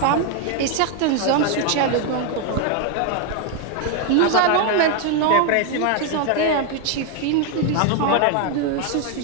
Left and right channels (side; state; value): both; different; correlation 0.01